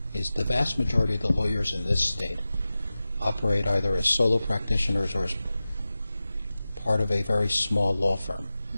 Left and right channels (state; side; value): inverted; both; correlation -0.95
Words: is the vast majority of the lawyers in this state operate either as solo practitioners or as part of a very small law firm,